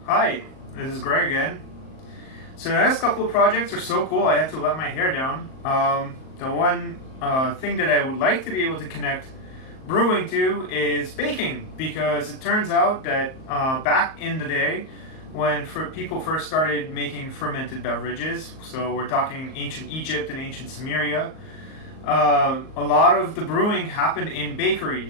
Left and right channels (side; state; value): right; late; 38 ms